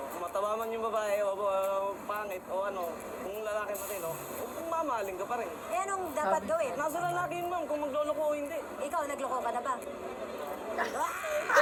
kung mataba man yung babae o pangit o ano, kung lalaki matino, kung mamahalin ka pa rin. Eh anong dapat gawin? Nasa lalaki yun, ma'am, kung magloloko o hindi. Ikaw, nagloko ka na ba?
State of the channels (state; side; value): identical; both; correlation 1.00